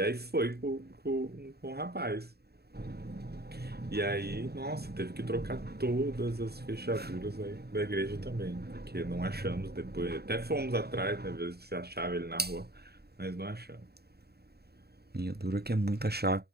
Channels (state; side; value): late; left; 0.47 ms